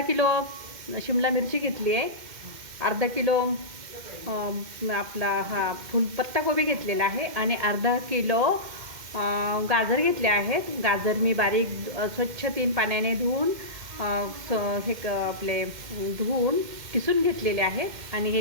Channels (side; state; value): left; late; 2.1 ms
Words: किलो शिमला मिरची घेतली आहे, अर्धा किलो आपला पत्ताकोबी घेतलेला आहे आणि अर्धा किलो गाजर घेतले आहेत। गाजर मी बारीक स्वच्छ 3 पाण्याने धुवून धुवून किसून घेतलेले आहेत आणि